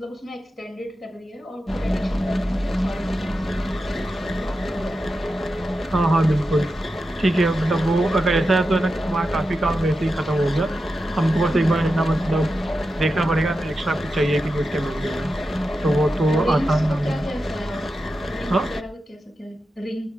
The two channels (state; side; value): normal; both; correlation 0.90